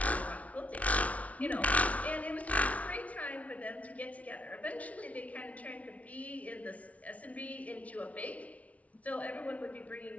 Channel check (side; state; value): right; late; 0.067 ms